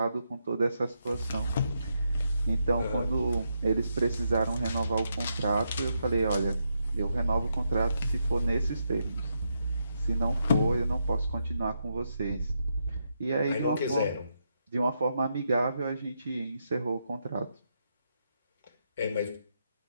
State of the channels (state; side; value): inverted; both; correlation -0.81